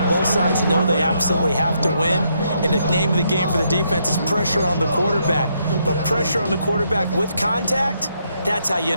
Both sides know they absolutely have to win, and the name of the game for the defense is pressure on the quarterback. But pressure on the quarterback with contact, that's how you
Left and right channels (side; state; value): both; inverted; correlation -0.76